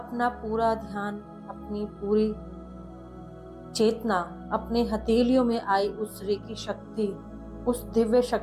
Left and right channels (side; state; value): both; identical; correlation 1.00